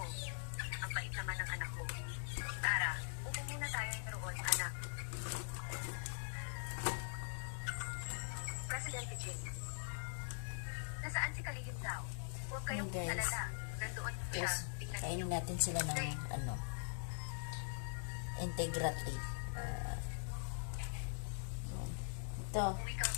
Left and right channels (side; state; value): right; silent; digital silence